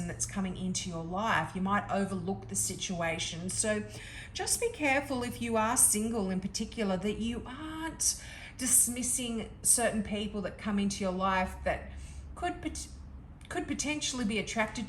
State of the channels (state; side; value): identical; both; correlation 1.00